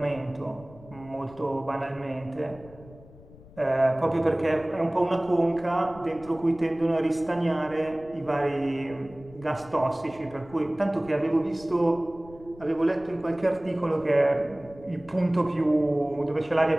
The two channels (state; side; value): noise; left; rumble, 21 dB below the sound